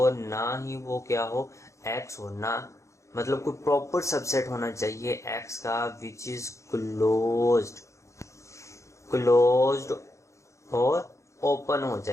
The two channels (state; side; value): late; right; 0.15 ms